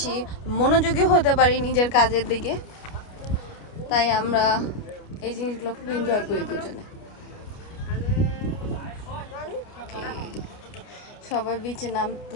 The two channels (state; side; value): late; right; 29 ms